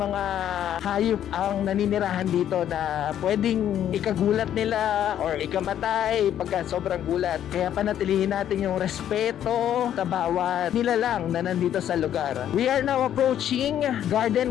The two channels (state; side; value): quieter; right; 10.6 dB